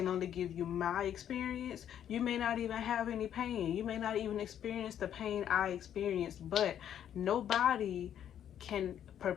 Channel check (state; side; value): quieter; right; 9.9 dB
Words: only give you my experience. You may not even have any pain. You may not even experience the pain I experienced, but nobody can